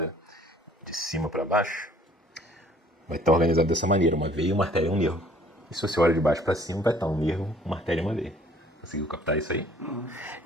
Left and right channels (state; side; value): normal; both; correlation 0.57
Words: de cima para baixo, vai estar organizado dessa maneira, uma veia, uma artéria e um nervo. E se você olha de baixo para cima, vai estar um nervo, uma artéria e uma veia. Conseguiu captar isso aí? Uhum.